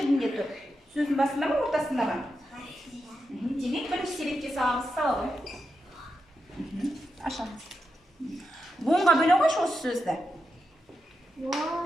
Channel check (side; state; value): both; normal; correlation 0.87